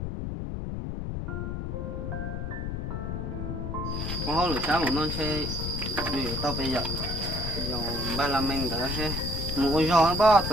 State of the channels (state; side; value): noise; left; rumble, 3 dB below the sound